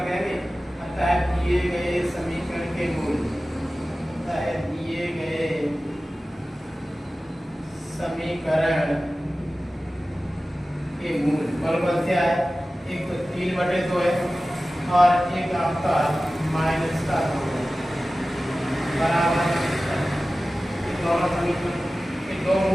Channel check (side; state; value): both; normal; correlation 0.96